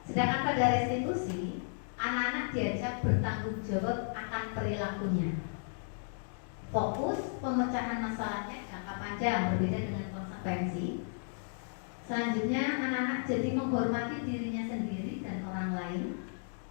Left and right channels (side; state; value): right; silent; digital silence